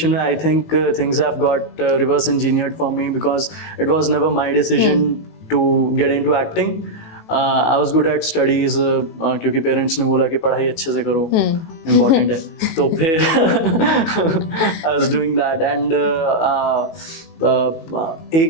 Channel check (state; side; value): late; right; 18 ms